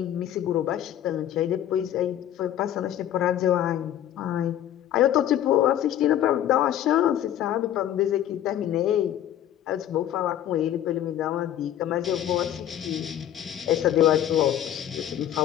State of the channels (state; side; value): quieter; right; 11.5 dB